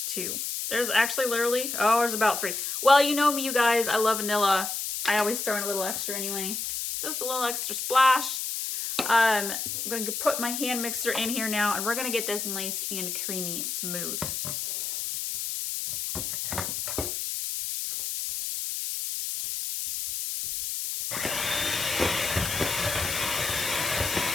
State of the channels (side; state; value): left; noise; hiss, 3 dB below the sound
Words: 2. There's actually literally, oh, there's about 3. Well, you know me, you guys, I love vanilla. I always throw in a little extra anyway. Just a little extra splash. I'm going to put my hand mixer in here now, and we're going to get this nice and creamy smooth.